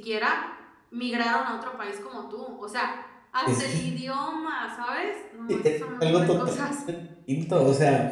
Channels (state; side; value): identical; both; correlation 1.00